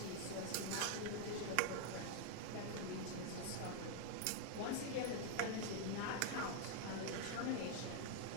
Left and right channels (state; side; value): different; both; correlation 0.00